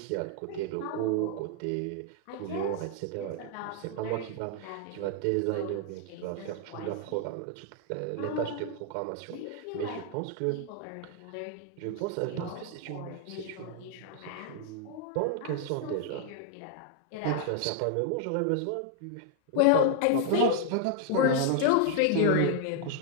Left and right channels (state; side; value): different; both; correlation -0.01